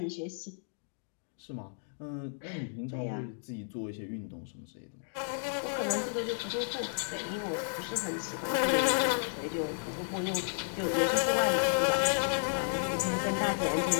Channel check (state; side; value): silent; right; digital silence